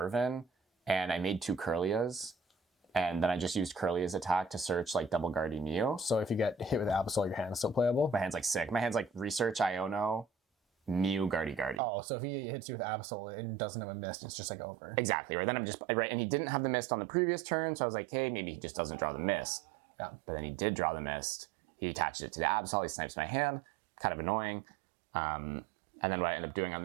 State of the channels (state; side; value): drops out; left; at 11.8 s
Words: And I made 2 Curlias, and then I just used Curlia's attack to search like Double Guardy Mew. So if you get hit with Absol, your hand's still playable? My hand's like sick. My hand's like Research Iono, Mew Guardy. Oh, so if he hits you with Absol and doesn't have a mist, it's just like over. Exactly, right? Then I'm just, right, and he didn't have the mist on the previous turn, so I was like, hey, maybe he just doesn't draw the mist. Yeah. But then he did draw the mist. He attaches it to the Absol, he snipes my hand, kind of annoying. And then what I end up doing on